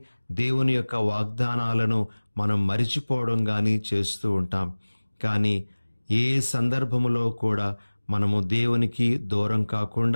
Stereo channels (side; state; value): both; inverted; correlation -1.00